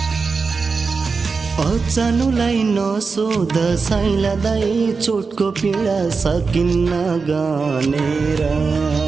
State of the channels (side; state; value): left; quieter; 4.7 dB